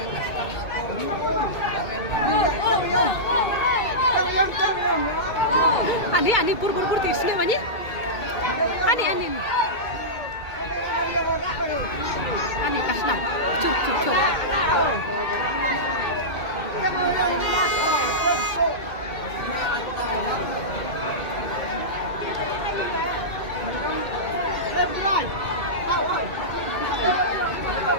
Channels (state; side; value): late; right; 2.2 ms